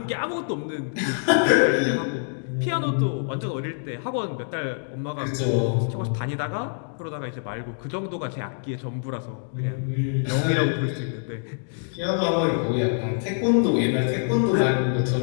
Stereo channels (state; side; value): silent; right; digital silence